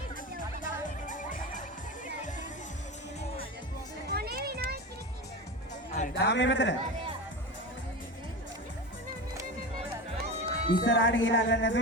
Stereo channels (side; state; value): both; normal; correlation 0.26